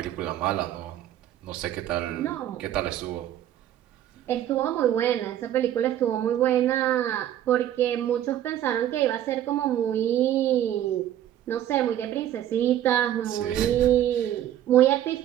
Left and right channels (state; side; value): quieter; left; 11.8 dB